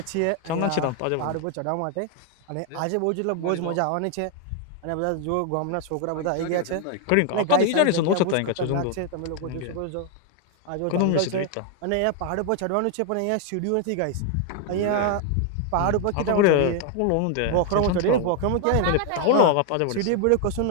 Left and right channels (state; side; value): different; both; correlation 0.00